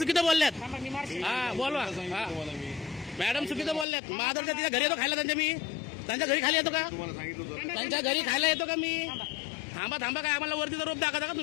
बोलल्यात. थांबा, मी मारशील. हा बोलवा. हा मॅडम चुकीचं बोलल्यात. महादर्शत तिच्या घरी येतो खायला त्यांच्या मी? त्यांच्या घरी खाली येतो का? त्यांच्या घरी खायला येतो का मी? थांबा थांबा, काय आम्हाला वरतीचा रोप दाखवता का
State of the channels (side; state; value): right; drops out; at 3.9 s